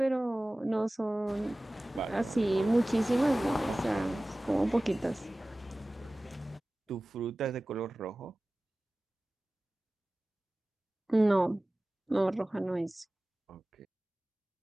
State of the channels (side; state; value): both; normal; correlation 0.97